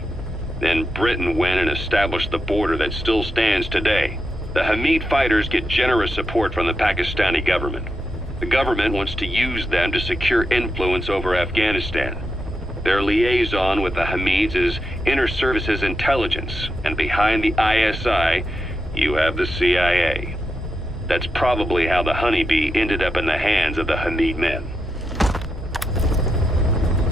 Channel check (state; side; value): normal; both; correlation 0.85